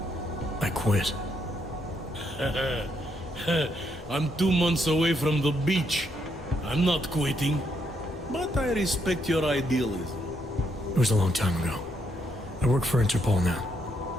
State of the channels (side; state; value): both; normal; correlation 0.76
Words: I quit. I'm 2 months away from the beach. I'm not quitting. But I respect your idealism. It was a long time ago. I work for Interpol now.